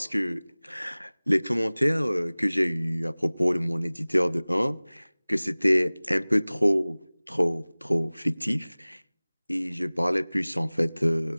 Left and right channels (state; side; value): inverted; both; correlation -1.00